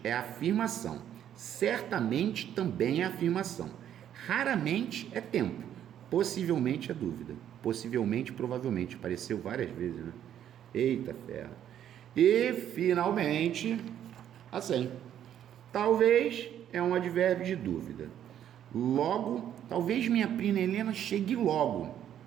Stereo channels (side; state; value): left; quieter; 10.4 dB